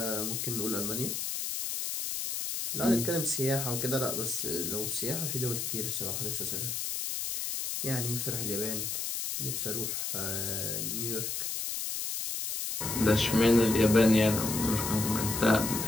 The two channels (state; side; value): noise; left; hiss, 3 dB below the sound